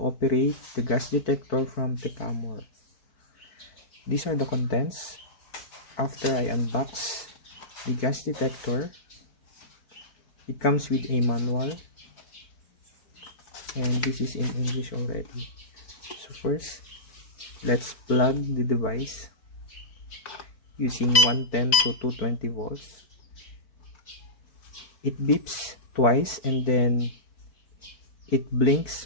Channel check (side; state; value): right; late; 4.5 ms